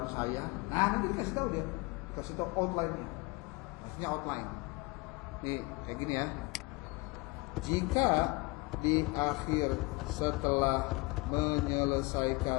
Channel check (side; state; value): right; quieter; 25.0 dB